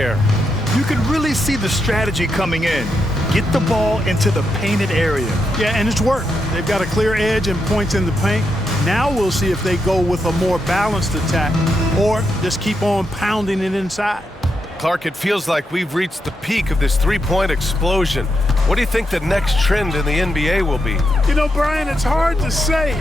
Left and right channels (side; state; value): both; normal; correlation 0.83